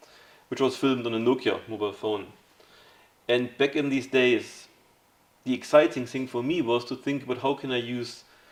which was filmed on a Nokia mobile phone. And back in these days, the exciting thing for me was to think about how can I use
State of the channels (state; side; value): identical; both; correlation 1.00